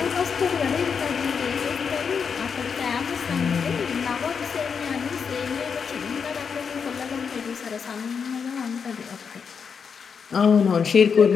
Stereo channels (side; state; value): right; quieter; 6.2 dB